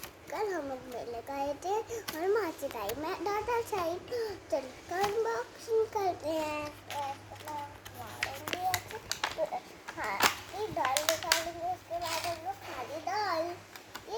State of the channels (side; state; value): both; identical; correlation 1.00